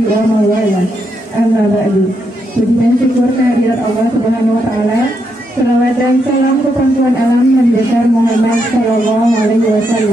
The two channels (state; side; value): normal; both; correlation 0.80